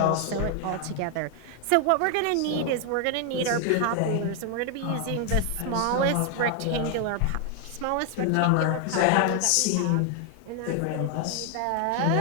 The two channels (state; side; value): different; both; correlation 0.00